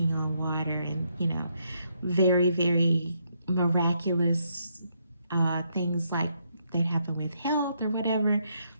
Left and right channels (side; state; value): both; inverted; correlation -0.76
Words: on water and, very, very miraculous things like that happen with health or whatever.